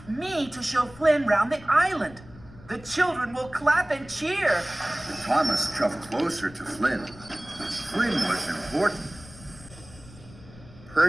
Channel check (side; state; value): left; noise; rumble, 20 dB below the sound